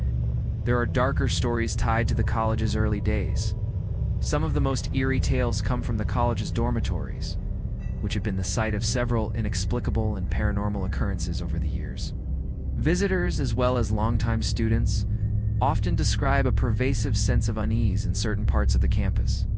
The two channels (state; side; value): identical; both; correlation 1.00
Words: there are darker stories tied to the college's early days. Some of the most eerie tales come from the college's dormitories, which have been the site of several inexplicable and paranormal occurrences over the years. Visitors, as well as longtime students, often describe a pervasive sense of unease in certain parts of the campus,